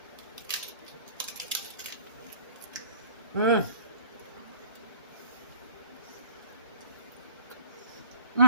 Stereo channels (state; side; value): inverted; both; correlation -0.52